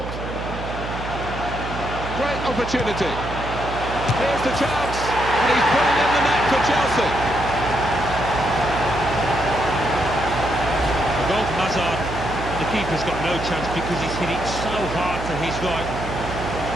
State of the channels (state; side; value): noise; right; hum, 8 dB below the sound